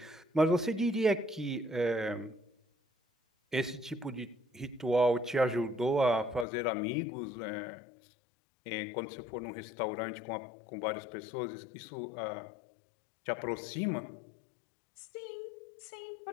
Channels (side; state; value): right; drops out; at 6.5 s